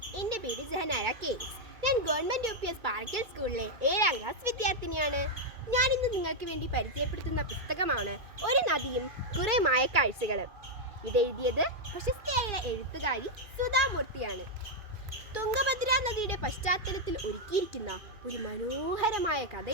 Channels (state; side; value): late; left; 2.4 ms